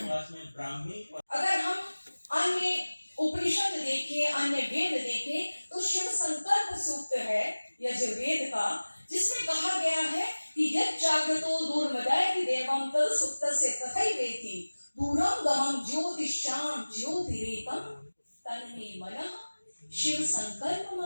पास में ब्राह्मी और अगर हम अन्य उपनिषद देखें, अन्य वेद देखें तो शिव संकल्प सूक्त है यजुर्वेद का, जिसमें कहा गया है कि यत् जागृतो दूरमदयति देवं तद सुप्तस्य तथैवेति दूरम गमं ज्योतिषां ज्योतिरेकं तन्मे मनः शिव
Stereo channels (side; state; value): both; inverted; correlation -1.00